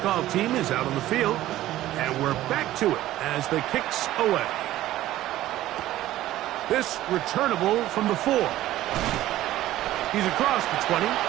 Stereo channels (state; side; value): quieter; left; 14.7 dB